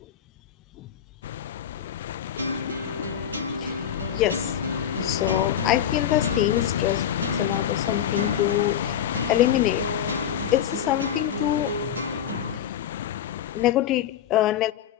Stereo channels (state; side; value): quieter; right; 9.6 dB